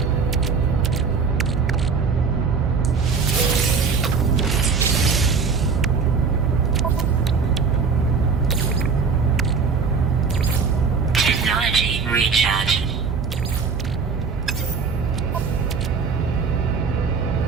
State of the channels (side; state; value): left; quieter; 5.3 dB